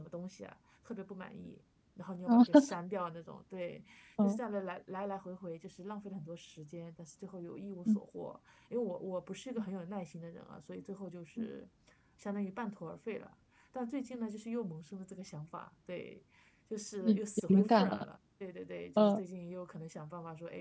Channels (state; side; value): identical; both; correlation 1.00